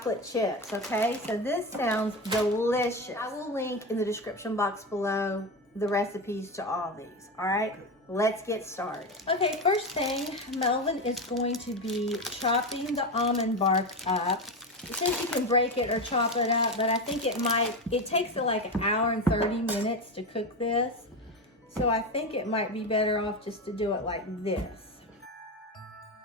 chips, okay? So this sounds delicious. I will link in the description box below the recipes to all these, all right? Let's get started. Okay, first thing, Melvin is going to be chopping the almond bark up. It says you can break it or chop it up, but I think it takes like an hour and 30 minutes to cook this. So I think it might be better off just to do it like this.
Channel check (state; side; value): normal; both; correlation 0.18